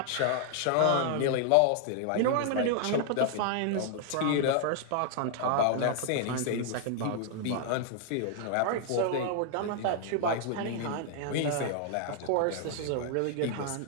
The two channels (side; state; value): both; different; correlation -0.01